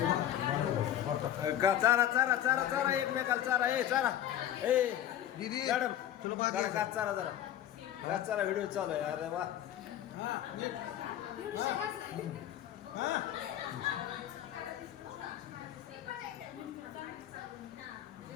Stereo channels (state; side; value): quieter; right; 11.5 dB